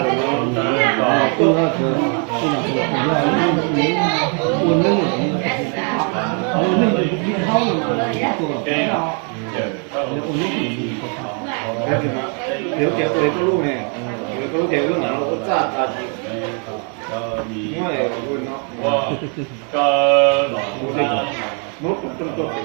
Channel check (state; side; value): quieter; left; 39.1 dB